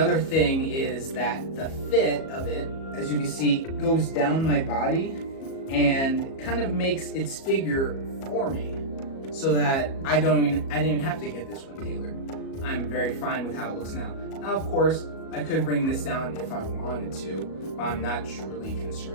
thing is that the fit of it, as you can see, goes down my body and kind of makes its figure for me, so that I didn't even have to get this one tailored. I'm very fine with how it looks now. Now, of course, I could bring this down if I wanted to, but I'm not truly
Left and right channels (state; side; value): late; right; 37 ms